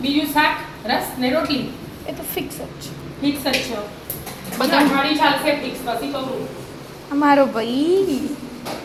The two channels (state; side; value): identical; both; correlation 1.00